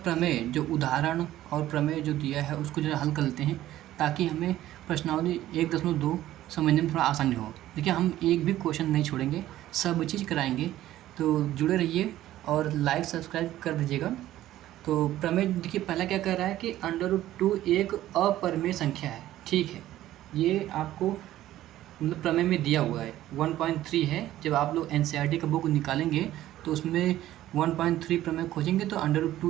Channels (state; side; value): quieter; left; 14.0 dB